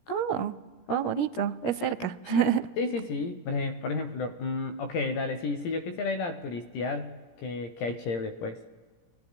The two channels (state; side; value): late; right; 17 ms